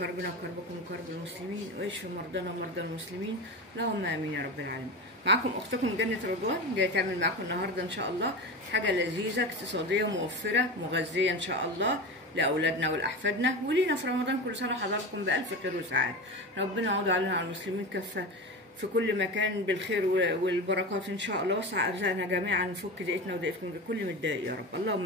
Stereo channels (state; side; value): normal; both; correlation 0.25